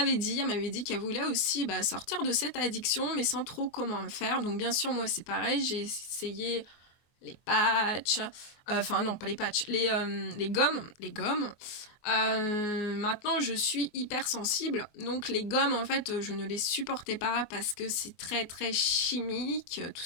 dit qu'elle voulait aussi sortir de cette addiction, mais sans trop comment faire. Donc bien sûr, moi c'est pareil, j'ai essayé les patchs, non pas les patchs, les gommes. Maintenant, je suis hypersensible, donc les gommes, en fait, je ne les supportais pas parce que c'est très très chimique, tout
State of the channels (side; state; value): right; late; 24 ms